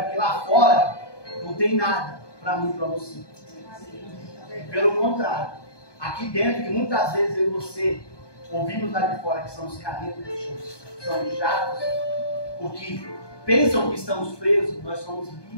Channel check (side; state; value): right; late; 1.2 ms